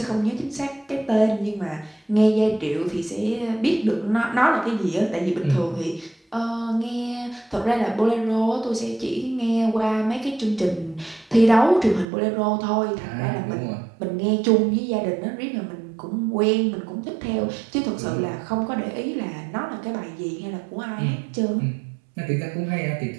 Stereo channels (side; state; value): left; drops out; at 12.1 s